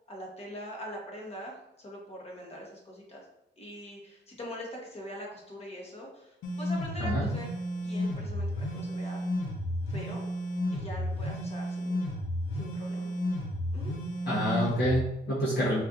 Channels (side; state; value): both; normal; correlation 0.70